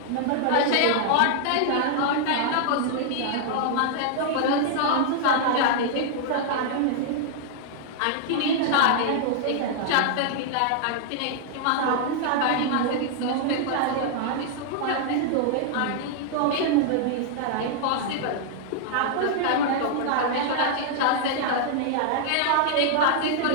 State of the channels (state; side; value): different; both; correlation -0.01